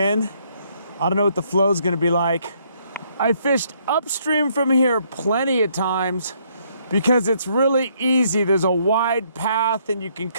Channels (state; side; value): inverted; both; correlation -0.69